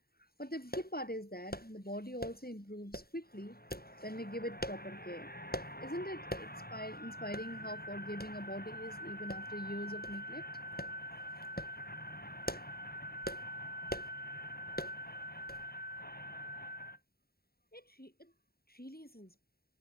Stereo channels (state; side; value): late; right; 0.45 ms